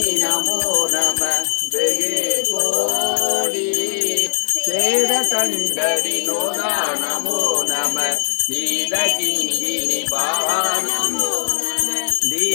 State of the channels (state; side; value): silent; right; 67 dB below the other